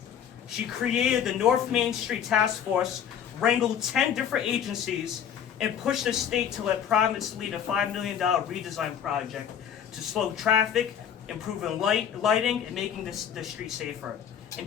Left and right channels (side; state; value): right; quieter; 8.8 dB